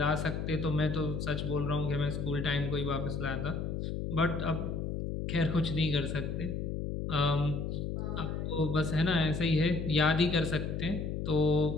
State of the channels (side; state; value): left; noise; hum, 3 dB below the sound